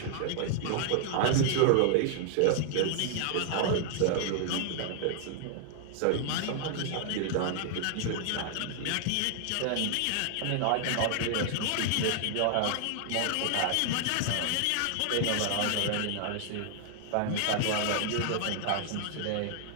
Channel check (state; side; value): different; both; correlation 0.00